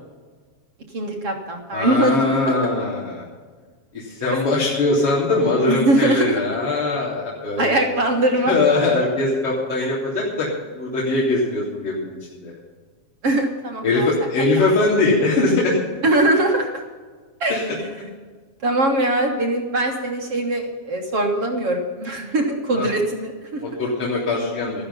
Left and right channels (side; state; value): left; late; 7.3 ms